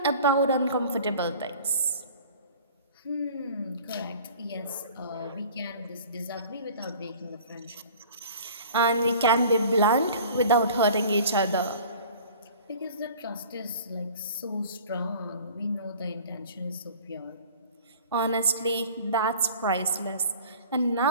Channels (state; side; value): inverted; both; correlation -0.45